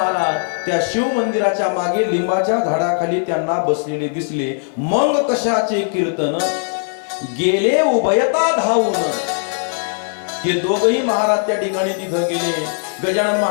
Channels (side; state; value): right; silent; 57 dB below the other